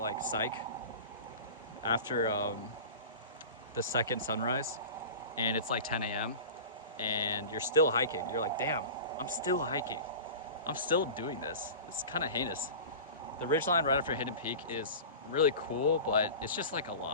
psych, after the second sunrise, and it's like 10 a.m. and you're still hiking. You're like, damn, I'm still hiking. I'm still doing this. It's kind of heinous. The ridgeline right after Hidden Peak is really cool, but it's just like a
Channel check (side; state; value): both; inverted; correlation -0.34